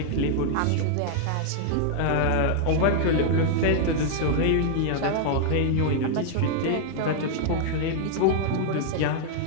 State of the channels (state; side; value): different; both; correlation -0.01